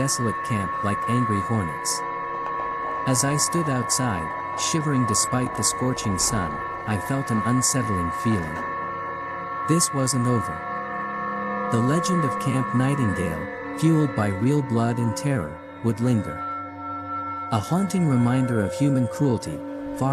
camp like angry hornets. As I stood outside, shivering despite the scorching sun, I felt an unsettling feeling. This wasn't over. The legend of Camp Nightingale, fueled by real blood and terror, would linger. A haunting reminder of human cruelty,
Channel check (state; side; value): identical; both; correlation 1.00